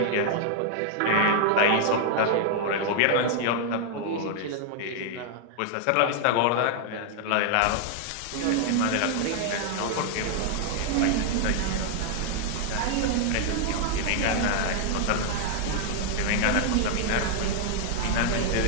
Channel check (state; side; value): different; both; correlation 0.00